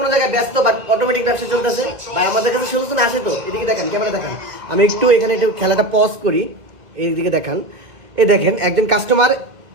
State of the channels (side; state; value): left; late; 2.0 ms